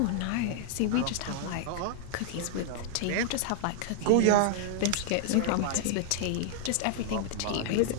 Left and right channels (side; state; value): both; different; correlation 0.00